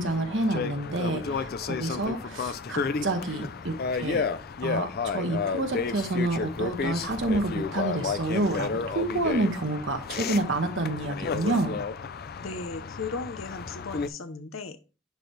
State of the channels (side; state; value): both; normal; correlation 0.32